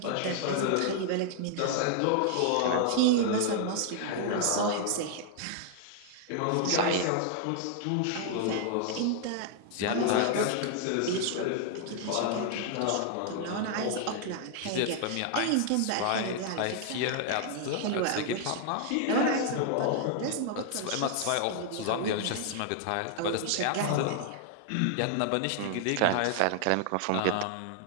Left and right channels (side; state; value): both; different; correlation 0.00